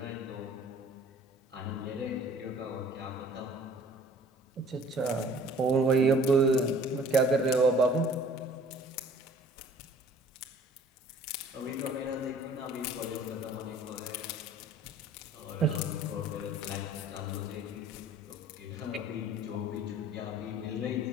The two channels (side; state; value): both; normal; correlation 0.51